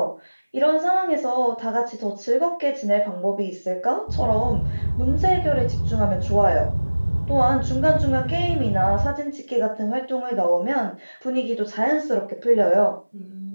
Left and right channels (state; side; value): inverted; both; correlation -1.00